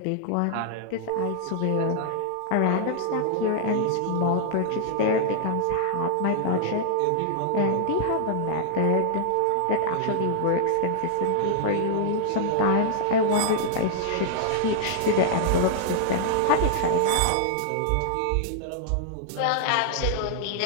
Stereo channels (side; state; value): both; different; correlation -0.01